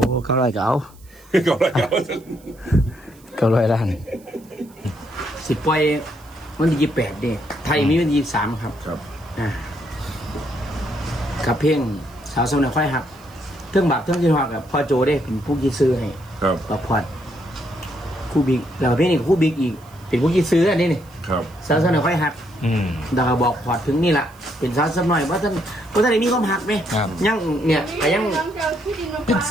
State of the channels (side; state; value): right; noise; hiss, 27 dB below the sound